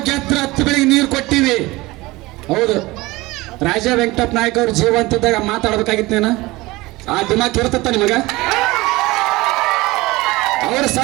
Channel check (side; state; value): left; quieter; 20.7 dB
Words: ಗೆದ್ರ 10 ಬೆಳಿಗ್ಗೆ ನೀರು ಕೊಟ್ಟಿವಿ. ಹೌದು, ರಾಜ ವೆಂಕಟಪ್ಪ ನಾಯಕ್ ಅವ್ರ ಜೀವಂತಿದ್ದಾಗ ಮಾತಾಡ್ಬೇಕಾಗಿತ್ತೇನ? ಆ ದಿಮಾಕ್ ಇರ್ತತ್ತ ನಿಮಗ? ಅವ್ರ